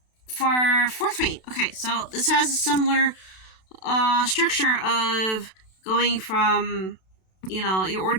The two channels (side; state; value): right; late; 32 ms